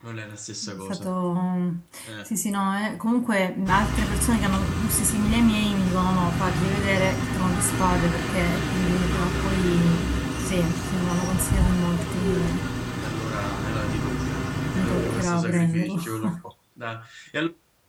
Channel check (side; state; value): both; identical; correlation 1.00